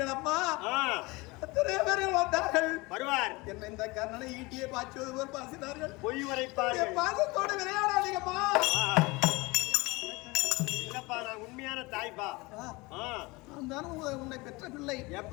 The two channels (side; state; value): right; quieter; 23.9 dB